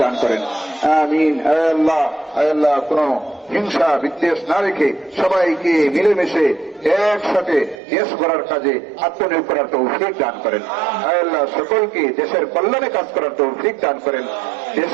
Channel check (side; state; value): left; drops out; at 7.8 s